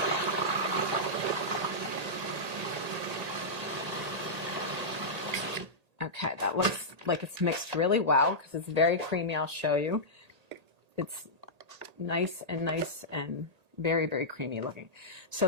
Okay, that looks like it's mixed really well because it's very creamy. I'll show you. It's nice and very, very creamy looking. So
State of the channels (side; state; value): left; late; 1.8 ms